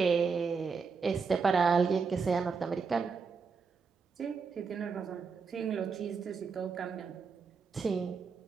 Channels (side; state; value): left; quieter; 5.2 dB